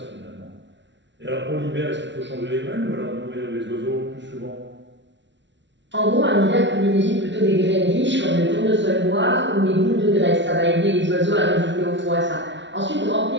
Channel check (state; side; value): late; left; 0.53 ms